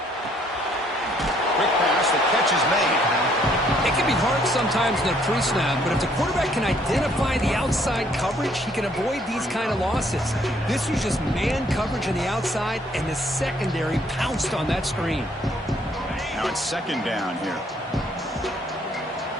Quick pass, the catch is made. It can be hard sometimes in a pre-snap, but if the quarterback can identify the outside coverage, he can avoid these kind of losses. This was just man coverage on the outside, and the secondary pounced on that screen. Now it's second down here.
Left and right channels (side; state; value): both; normal; correlation 0.65